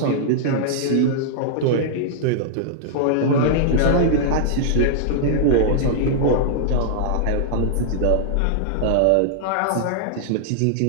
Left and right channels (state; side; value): different; both; correlation -0.01